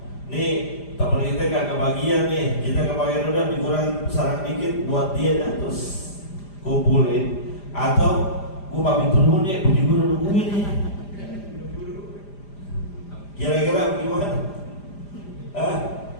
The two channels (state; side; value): late; right; 5.0 ms